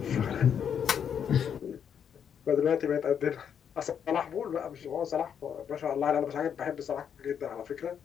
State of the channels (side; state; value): right; quieter; 8.1 dB